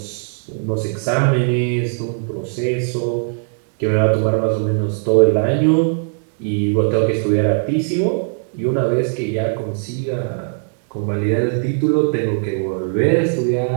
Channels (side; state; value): left; silent; 64 dB below the other